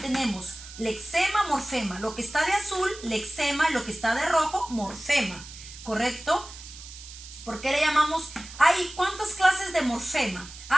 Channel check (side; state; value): right; noise; hiss, 15 dB below the sound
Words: lexema, morfema. Lo que está de azul, lexema, y lo que está de rojo, morfema. ¿Correcto? ¿Por qué le llamamos? Hay ¿cuántas clases de morfema?